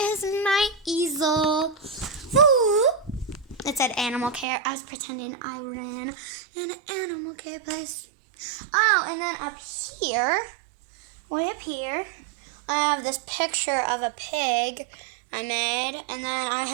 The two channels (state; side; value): drops out; left; at 4.5 s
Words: my easel. Ooh. It said animal care. I was pretending I ran an animal care place. Oh, and then up here, way up here, I have this picture of a pig I made. And then I